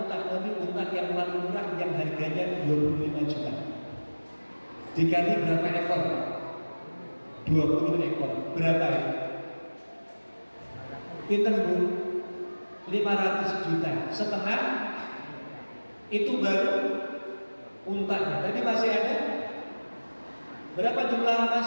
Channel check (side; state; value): both; inverted; correlation -1.00